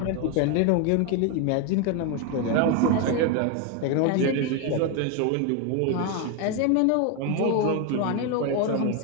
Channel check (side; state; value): both; different; correlation 0.01